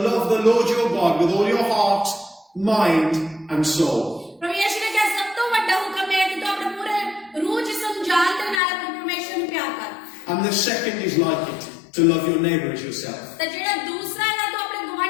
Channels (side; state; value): right; drops out; at 8.6 s